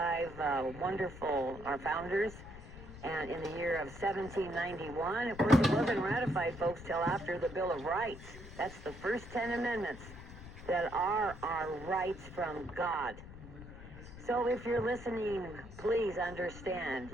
wonderful our founders, and in the year of 1791. Of course, it wasn't ratified, folks, till after the Bill of Rights. That's the first 10 amendments that are our rights from God. So if you're listening, please understand.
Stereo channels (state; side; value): noise; left; rumble, 14 dB below the sound